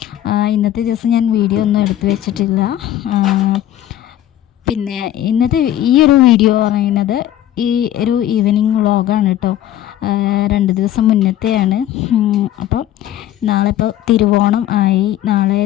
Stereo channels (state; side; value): quieter; right; 12.4 dB